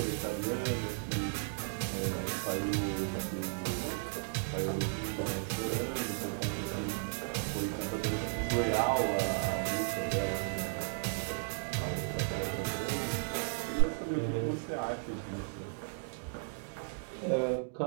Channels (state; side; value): silent; left; digital silence